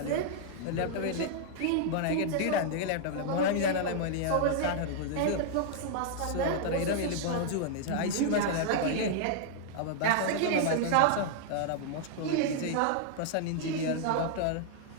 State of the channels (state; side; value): different; both; correlation -0.01